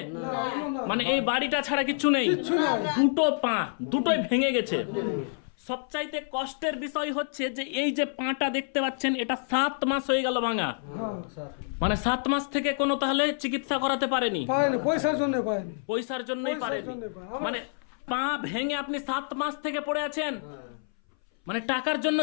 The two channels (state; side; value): silent; right; 59 dB below the other